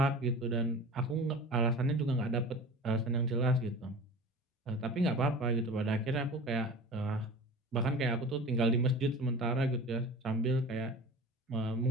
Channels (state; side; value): normal; both; correlation 0.37